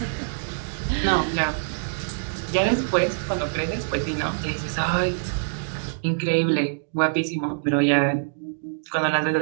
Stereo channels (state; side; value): silent; left; digital silence